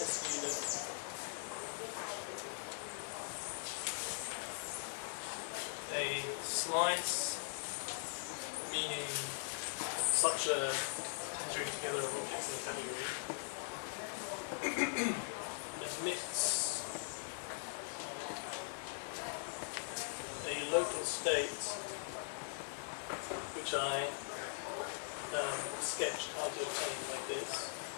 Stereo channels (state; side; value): silent; right; 50 dB below the other